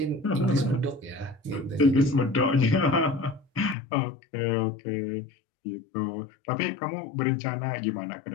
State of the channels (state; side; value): drops out; right; at 3.8 s